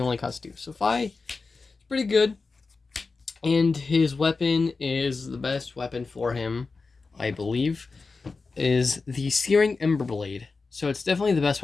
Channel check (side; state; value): right; quieter; 4.2 dB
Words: costs 2. So FAB is pretty good. And his weapon is the best weapon for him, I believe, is the Searing Ember Blade. So it's definitely the best